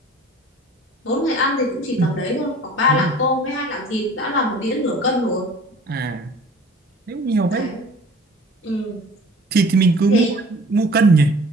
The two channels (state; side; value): normal; both; correlation 0.47